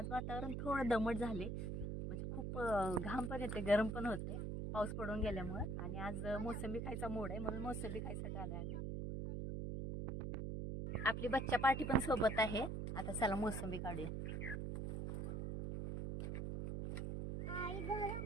वातावरण थोडं दमट झाले, म्हणजे खूप घाम पण येते, गरम पण होते पाऊस पडून गेल्यामुळे। आणि आज मोसंबी खायचा मूड आहे म्हणून मोसंबी खायसाठी आलो आम्ही। आपली बच्चा पार्टी पण सोबत आहे। आता चला मोसंबी काढूया।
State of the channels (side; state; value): right; noise; hum, 2 dB below the sound